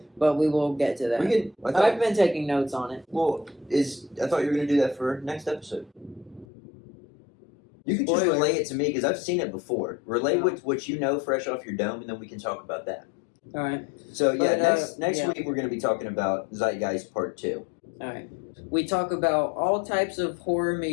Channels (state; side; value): drops out; right; at 6.5 s